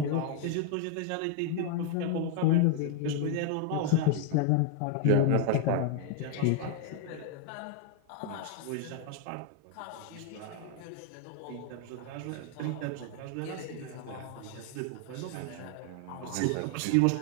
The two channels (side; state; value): both; different; correlation 0.01